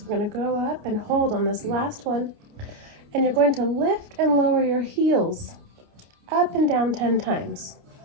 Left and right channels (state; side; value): late; left; 29 ms